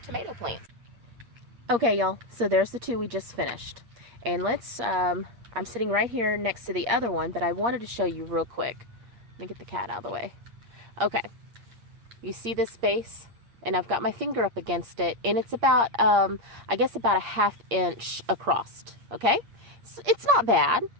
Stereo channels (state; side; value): late; left; 8.6 ms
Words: plants. Okay, y'all, so there's the two we just finished. And let's, I'm sitting right here next to the other one, but I wanted to show you real quick. Let me get the cat out of the way. Okay, you see this space? And I've got my finger up against it, and it's about, I guess about a ½ inch across, okay? So it's not bad,